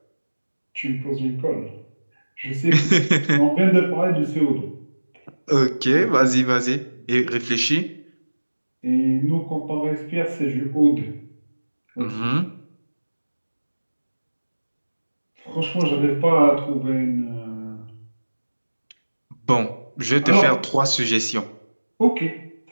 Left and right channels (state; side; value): inverted; both; correlation -1.00